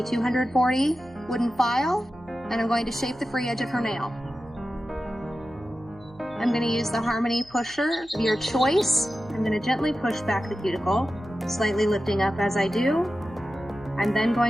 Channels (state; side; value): noise; right; hum, 26 dB below the sound